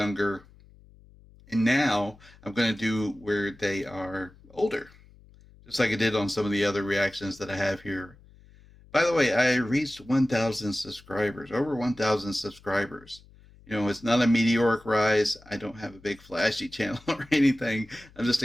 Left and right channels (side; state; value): left; noise; hum, 25 dB below the sound